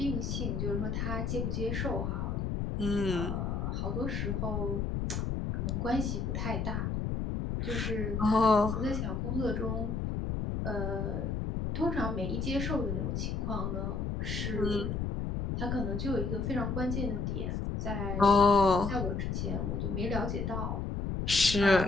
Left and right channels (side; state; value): left; noise; rumble, 1 dB below the sound